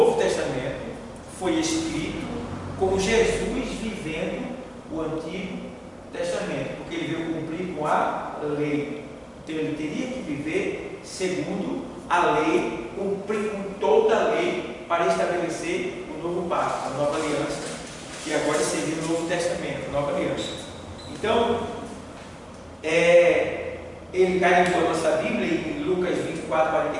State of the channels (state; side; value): identical; both; correlation 1.00